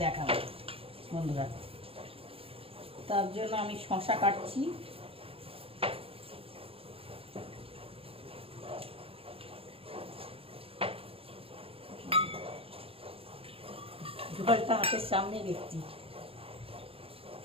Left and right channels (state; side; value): late; left; 0.27 ms